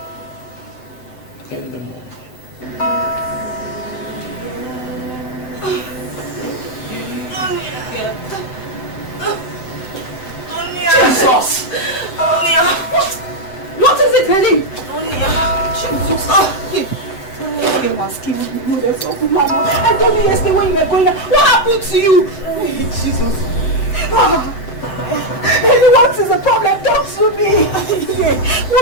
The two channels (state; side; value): late; right; 7.9 ms